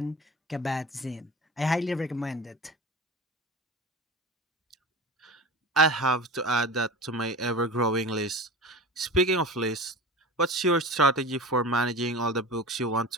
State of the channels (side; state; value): both; normal; correlation 0.33